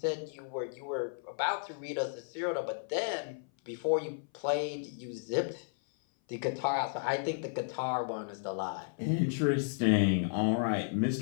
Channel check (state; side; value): silent; right; 55 dB below the other